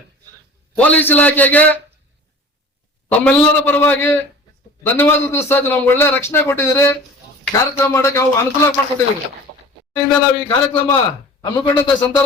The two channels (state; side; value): normal; both; correlation 0.41